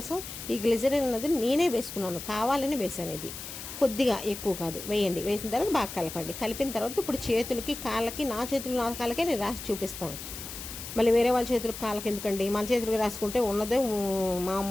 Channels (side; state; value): left; noise; hiss, 10 dB below the sound